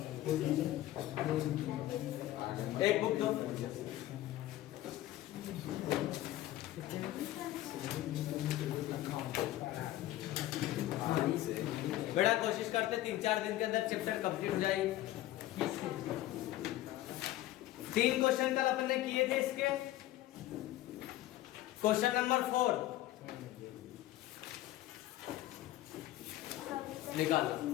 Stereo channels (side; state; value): right; quieter; 15.0 dB